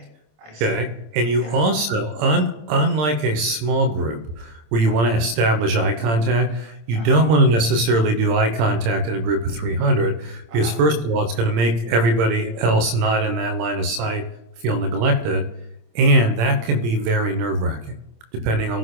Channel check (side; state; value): left; late; 26 ms